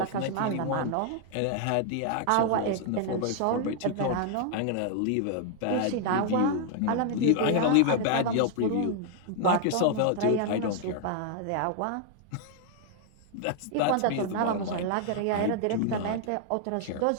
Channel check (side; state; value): both; different; correlation 0.00